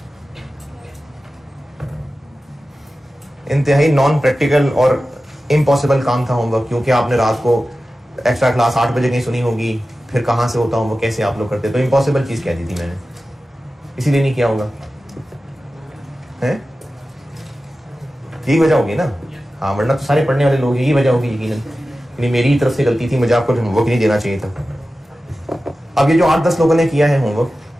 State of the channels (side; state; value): both; normal; correlation 0.94